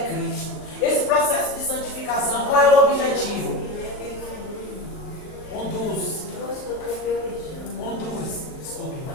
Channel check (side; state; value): right; late; 38 ms